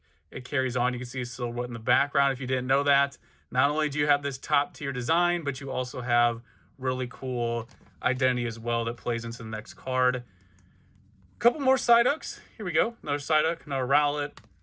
it carries on. You can see a silhouette in the background if you didn't know that. Not only do you have this top tier design, but you also have really cool identity as well that plays into the next card. A couple more Psyducks. Here we go. Another Psyduck, another Rowlet.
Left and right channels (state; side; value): identical; both; correlation 1.00